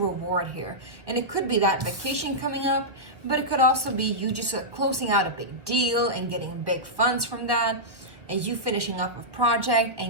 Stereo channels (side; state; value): left; late; 1.3 ms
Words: here, and it could be that vacation coming up, but it could also be you just closing out a big deal and getting big funds from that, and you finishing up a project